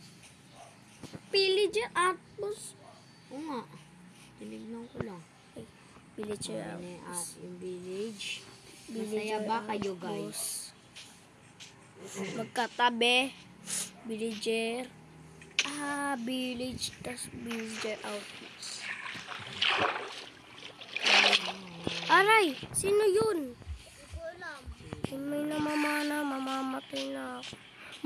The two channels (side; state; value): both; identical; correlation 1.00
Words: Pillager Outpost. Oo nga. Tinignan ko lang. Pillager Ayun, Outpost. yung village. Villager Masaya ba kayo, Outpost. guys? Magkatabi. Villager. Village. Tas Villager Outpost. Aray! Sino yun? Hindi ko alam. May namamana. Mamamatay na ako.